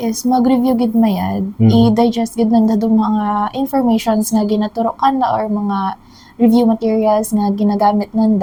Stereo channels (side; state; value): both; identical; correlation 1.00